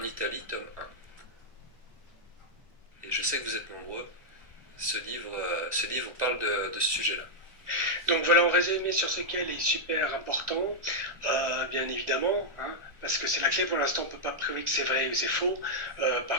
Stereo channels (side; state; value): left; late; 1.5 ms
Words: Italie, tome 1. Et je sais que vous êtes nombreux. Ce livre parle de ce sujet-là. Donc voilà, en résumé sur ce qu'elle est super important, bien évidemment, hein, parce que c'est la clé. Pour l'instant, on ne peut pas prouver que c'est vrai ou c'est faux.